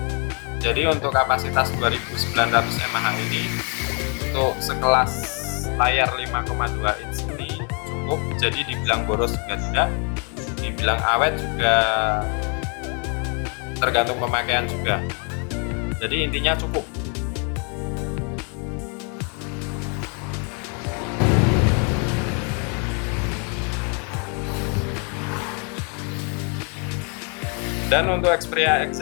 Jadi untuk kapasitas 2900 mAh ini untuk sekelas layar 5,2 inch ini cukup. Jadi dibilang boros juga tidak, dibilang awet juga tergantung pemakaian juga. Jadi intinya cukup. Dan untuk Xperia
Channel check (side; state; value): right; quieter; 37.5 dB